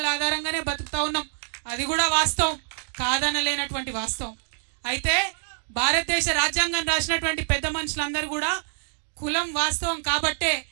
ఆధారంగానే బతుకుతా ఉన్నాం, అది కూడా వాస్తవం, కాదనలేనటువంటి వాస్తవం. అయితే భారతదేశ రాజ్యాంగం రాసినటువంటి పెద్ద మనుషులందరూ కూడా కులం వాస్తవం కాబట్టే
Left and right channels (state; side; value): silent; left; digital silence